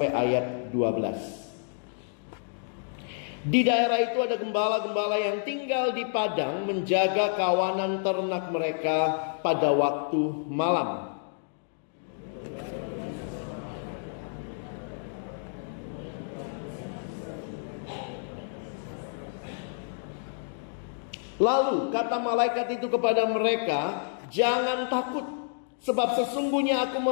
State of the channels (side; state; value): right; silent; digital silence